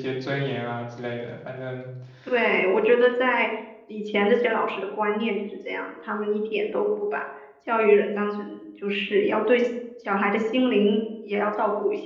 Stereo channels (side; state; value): both; identical; correlation 1.00